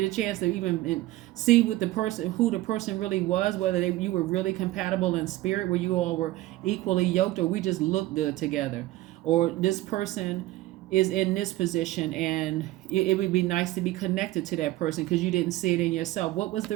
a chance to even see what the person, who the person really was, whether you were really compatible in spirit, where you all were equally yoked, or we just look good together. Or this person is in this position and it would be nice to be connected to that person because you didn't see it in yourself. What was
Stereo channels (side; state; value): left; quieter; 16.9 dB